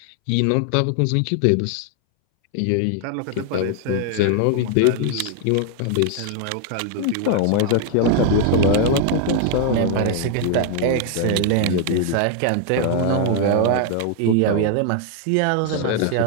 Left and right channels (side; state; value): both; different; correlation 0.00